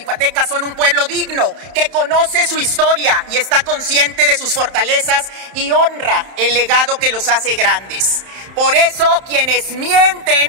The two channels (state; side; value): late; left; 31 ms